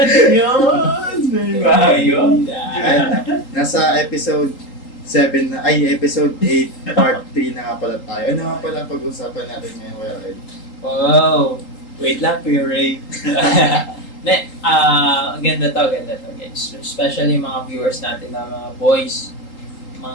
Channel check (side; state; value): right; late; 3.8 ms